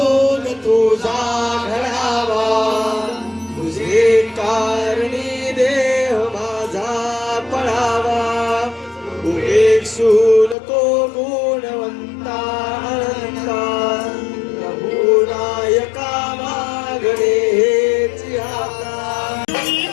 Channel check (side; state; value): right; drops out; at 10.6 s